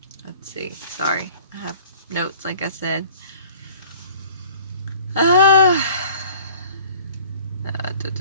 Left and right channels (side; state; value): both; inverted; correlation -0.49